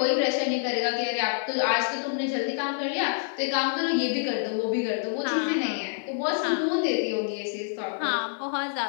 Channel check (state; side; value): silent; right; digital silence